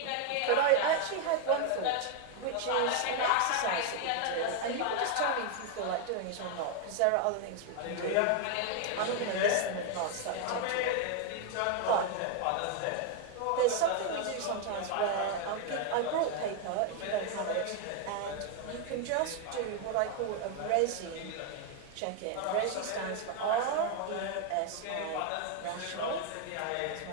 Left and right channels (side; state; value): both; different; correlation 0.01